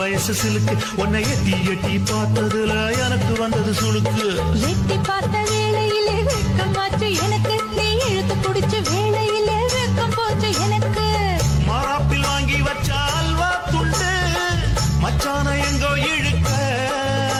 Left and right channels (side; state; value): both; identical; correlation 1.00